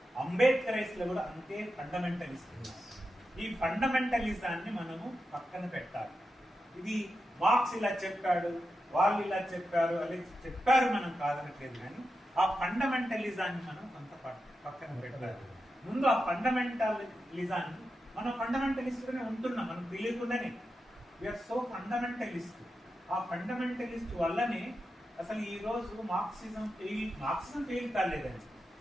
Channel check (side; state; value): both; normal; correlation 0.89